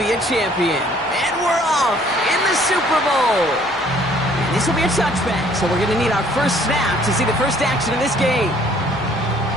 a champion. And we're off in the Super Bowl. And this will be a touchback, so we're going to need our first snap to see the first action of this game.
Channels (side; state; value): both; normal; correlation 0.59